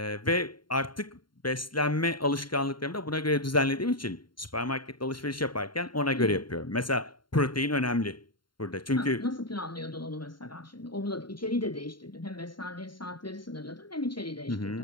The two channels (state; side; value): late; right; 0.72 ms